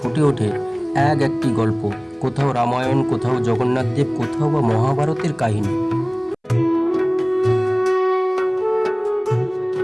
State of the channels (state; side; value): identical; both; correlation 1.00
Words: ওঠে একটি গল্প, কোথাও রামায়ণ, কোথাও জগন্নাথদেব, কোথাও বা মহাভারতের কাহিনী।